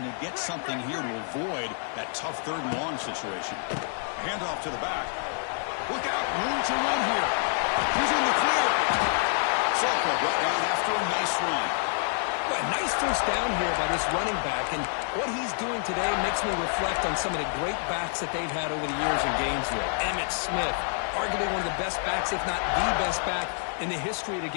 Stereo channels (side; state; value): right; silent; 60 dB below the other